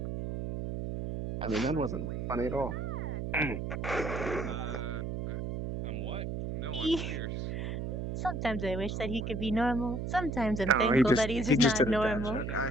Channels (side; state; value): right; noise; hum, 4 dB below the sound